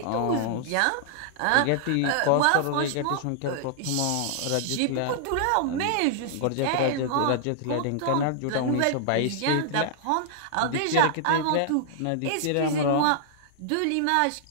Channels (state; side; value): different; both; correlation -0.01